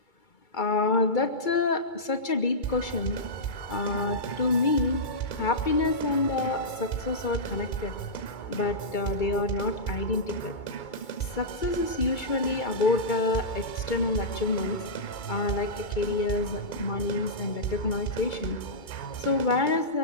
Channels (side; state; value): right; late; 2.3 ms